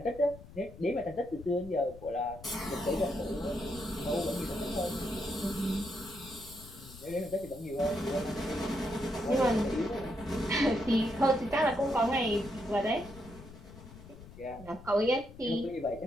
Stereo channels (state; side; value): noise; left; rumble, 17 dB below the sound